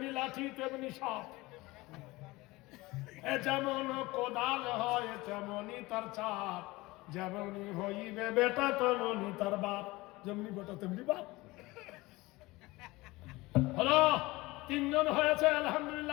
লাঠি তেমনি সাপ, যেমন কোদাল হয় তেমনি তার চাপ, যেমনি হইবে বেটা তেমনি তার বাপ, যেমনি বেটা তেমনি বাপ। হলো 3 জন হয়েছে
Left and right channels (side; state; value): right; quieter; 21.1 dB